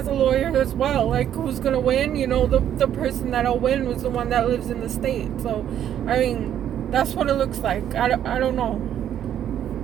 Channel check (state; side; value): quieter; left; 10.3 dB